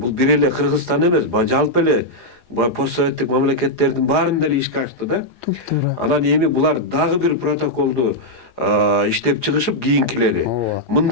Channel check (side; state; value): right; late; 4.9 ms